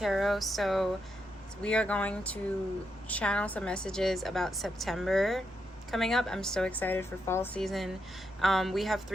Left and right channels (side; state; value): both; normal; correlation 0.82